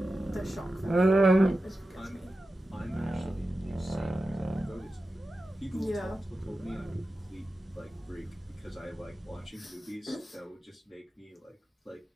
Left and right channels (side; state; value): both; normal; correlation 0.93